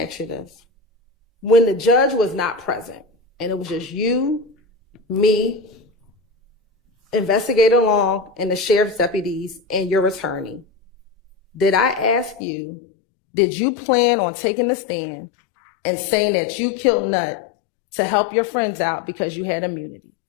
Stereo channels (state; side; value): drops out; right; at 12.4 s